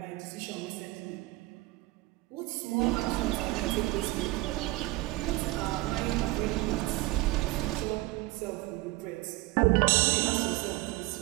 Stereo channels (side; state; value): left; quieter; 20.0 dB